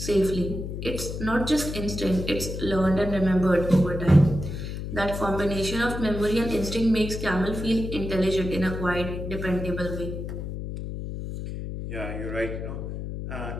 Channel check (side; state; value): left; noise; hum, 6 dB below the sound